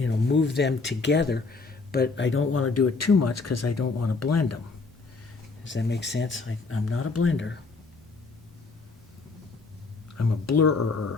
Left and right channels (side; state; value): right; quieter; 4.0 dB